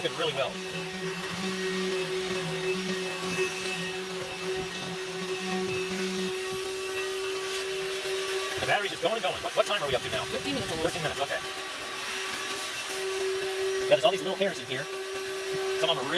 really well. The battery's just going and going. What time are we up to now? 15 minutes almost. 13 minutes, okay. Yeah, there's all these little hairs in here. Some of them are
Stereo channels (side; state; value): both; identical; correlation 1.00